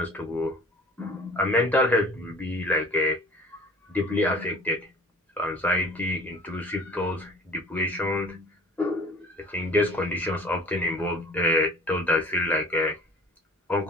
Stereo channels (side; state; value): both; normal; correlation 0.48